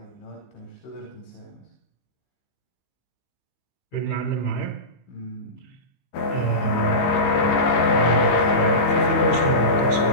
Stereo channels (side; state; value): right; late; 15 ms